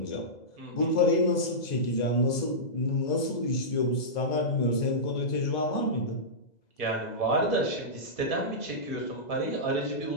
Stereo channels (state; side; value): late; right; 2.0 ms